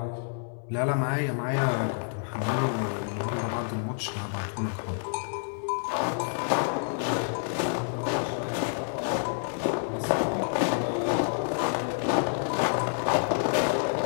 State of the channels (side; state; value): right; silent; digital silence